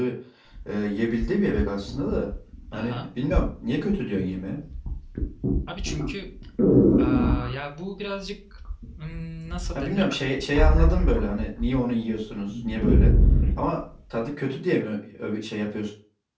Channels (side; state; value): both; identical; correlation 1.00